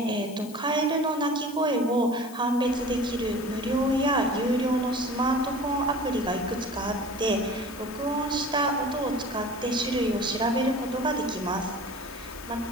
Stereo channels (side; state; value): left; noise; hiss, 18 dB below the sound